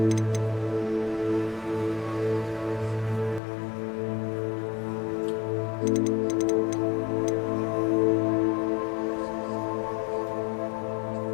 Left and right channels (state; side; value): drops out; right; at 3.4 s